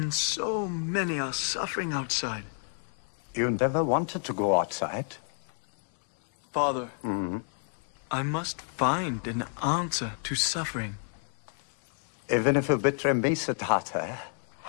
so many are suffering outside? You never wanted to go outside. Father, I must find an answer to suffering. Even if you betray me, Siddhartha,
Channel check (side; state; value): right; silent; 58 dB below the other